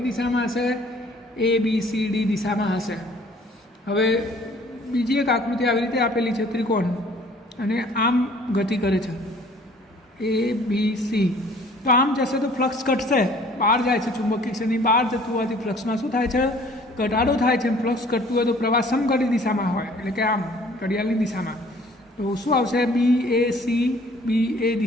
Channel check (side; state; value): both; normal; correlation 0.54